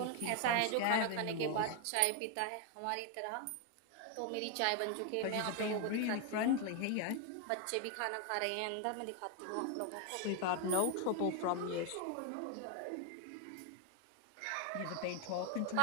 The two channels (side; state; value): both; different; correlation 0.01